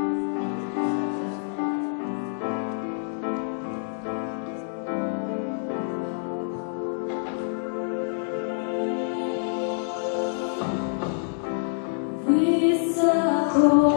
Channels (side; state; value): right; silent; digital silence